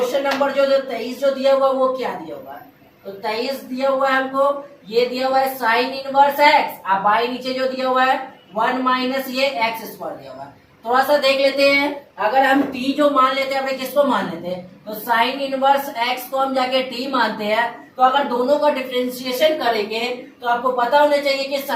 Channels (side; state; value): both; identical; correlation 1.00